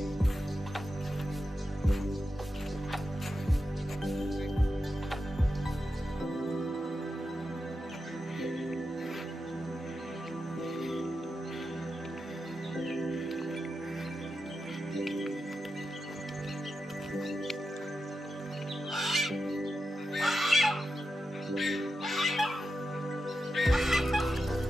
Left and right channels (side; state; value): both; normal; correlation 0.89